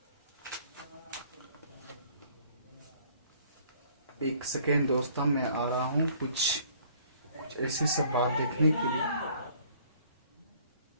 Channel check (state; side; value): inverted; both; correlation -0.58